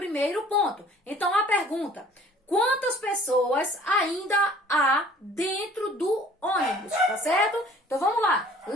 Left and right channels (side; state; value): both; normal; correlation 0.52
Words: ponto. Então, a pergunta: quantas pessoas ainda há dentro do ônibus? Tá certo? Então, vamos lá.